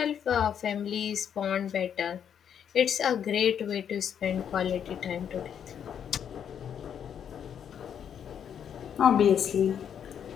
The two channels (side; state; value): right; quieter; 8.5 dB